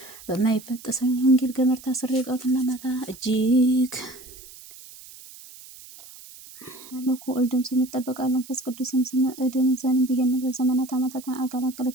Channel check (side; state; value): right; noise; hiss, 18 dB below the sound